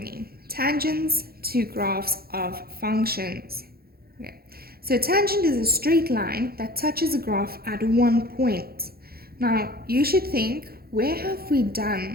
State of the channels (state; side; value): late; left; 0.44 ms